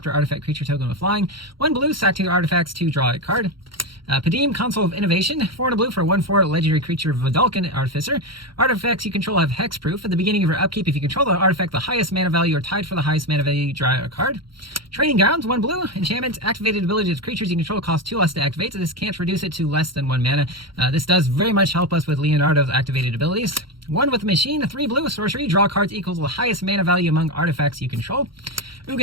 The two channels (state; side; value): late; left; 0.74 ms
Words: artifact creature token with flying. 1 blue, sack 2 artifacts to draw a card. Padim, Console of Innovation, 4 and a blue for 1/4 legendary creature Vidalcan Artificer. Artifacts you control have hexproof. At the beginning of your upkeep, if you control the artifact the highest mana value or tied for the highest mana value, you draw a card. Training Grounds, 1 blue, enchantment, activated ability of creatures you control cost 2 less to activate, so this can't reduce it to less than 1 mana. This does very much help us with Leonardo's activated abilities. 1 with Machine, 3 blue, sorcery, draw cards equal to the highest mana value among artifacts you control.